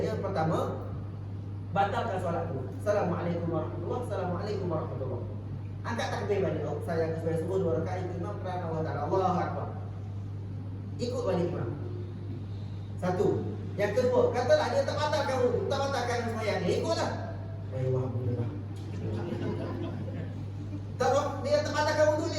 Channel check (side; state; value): both; identical; correlation 1.00